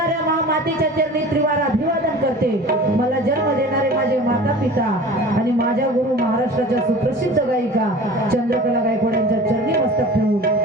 महामातेच्या चरणी त्रिवार अभिवादन करते. मला जन्म देणारे माझे माता पिता आणि माझ्या गुरु महाराष्ट्राच्या सुप्रसिद्ध गायिका चंद्रकला गायकवाड यांच्या चरणी मस्तक ठेवून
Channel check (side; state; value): both; normal; correlation 0.40